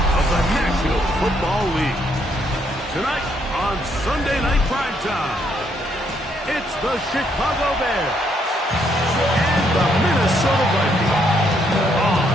of the National Football League. Tonight on Sunday Night Primetime, it's the Chicago Bears and the Minnesota Vikings on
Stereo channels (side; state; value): both; normal; correlation 0.72